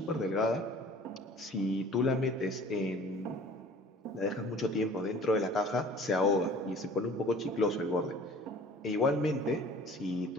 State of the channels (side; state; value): both; normal; correlation 0.48